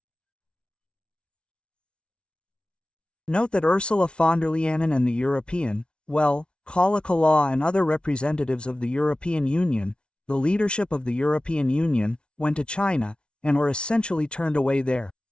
Note that Ursula von der Leyen and the European, Kala Kala and other representatives of the European Union, the leadership of the European Union, went to China, and were essentially turned away there.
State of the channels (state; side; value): late; right; 0.057 ms